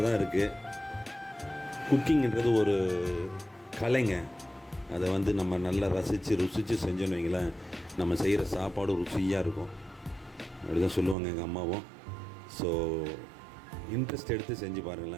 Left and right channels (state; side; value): drops out; left; at 11.2 s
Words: தான் இருக்குது. குக்கிங்கிறது ஒரு கலைங்க. அதை வந்து நம்ம நல்லா ருசித்து செஞ்சோன்னு வைங்களேன், நம்ம செய்கிற சாப்பாடு ருசியாக இருக்கும். அப்படி தான் சொல்லுவாங்க எங்கள் அம்மாவும். ஸோ இன்ட்ரெஸ்ட் எடுத்து செஞ்சு